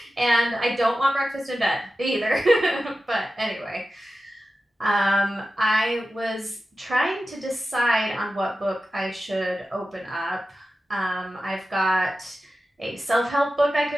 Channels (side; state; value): both; normal; correlation 0.93